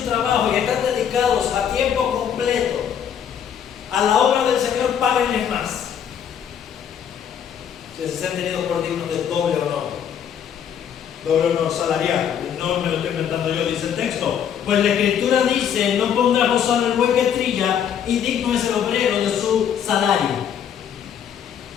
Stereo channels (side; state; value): right; quieter; 8.6 dB